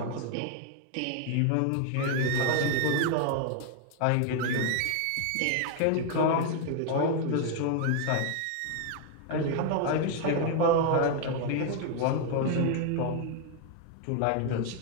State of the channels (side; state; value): both; different; correlation 0.00